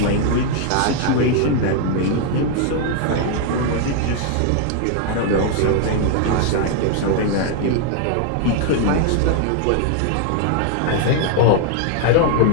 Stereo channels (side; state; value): both; different; correlation 0.00